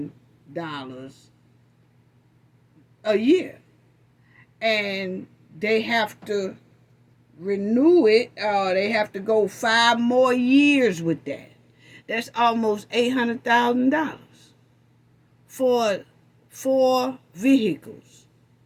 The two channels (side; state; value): both; identical; correlation 1.00